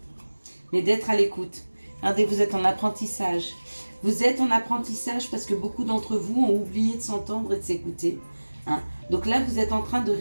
Mais d'être à l'écoute. Regardez, vous êtes en apprentissage. Vous êtes en apprentissage parce que beaucoup d'entre vous ont oublié de s'entendre et de s'écouter. Donc là, vous êtes en train de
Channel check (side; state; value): both; inverted; correlation -1.00